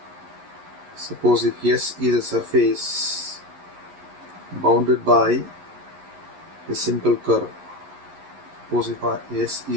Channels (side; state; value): left; late; 11 ms